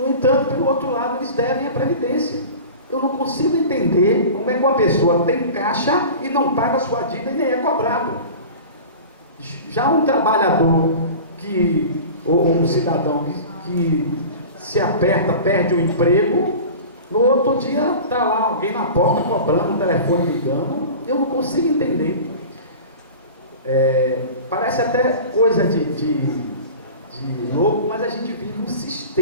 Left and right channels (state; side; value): inverted; both; correlation -0.36